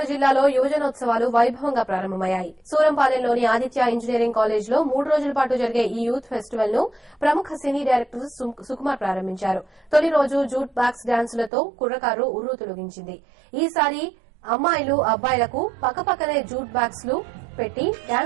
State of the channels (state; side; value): drops out; left; at 11.5 s